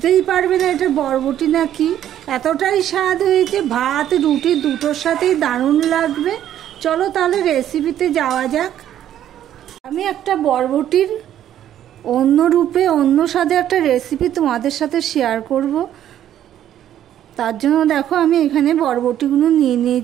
পারবে না এটা বরবটি না কি। এতটাই স্বাদ হয়েছে, ভাত রুটি দুটোর সাথেই দারুণ লাগবে। চলো তাহলে রেসিপিতে যাওয়া যাক। আমি একটা বরবটির অন্য রূপে, অন্য স্বাদে একটা রেসিপি তোমাদের সাথে শেয়ার করব। তার জন্য দেখো আমি এখানে বরবটিগুলো নিয়ে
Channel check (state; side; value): quieter; left; 11.2 dB